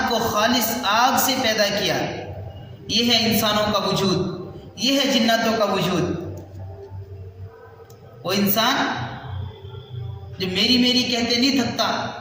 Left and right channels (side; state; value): both; identical; correlation 1.00